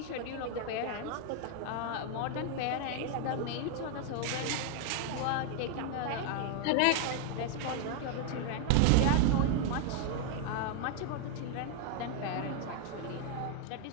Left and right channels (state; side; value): different; both; correlation 0.00